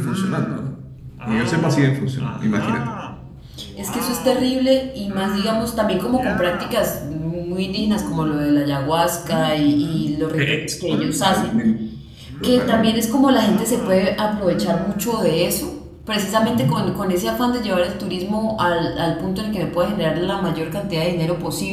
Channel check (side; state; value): both; identical; correlation 1.00